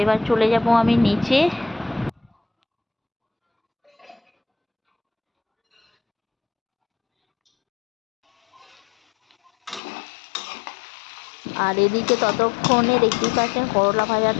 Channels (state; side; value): drops out; right; at 9.8 s